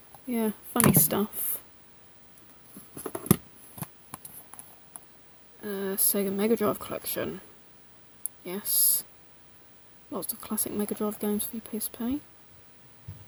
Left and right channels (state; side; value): identical; both; correlation 1.00